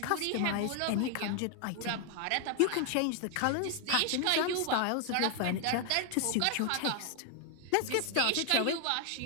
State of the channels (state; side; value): different; both; correlation 0.01